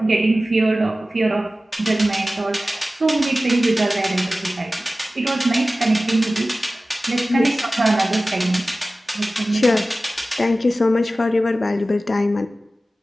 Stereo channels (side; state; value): both; normal; correlation 0.96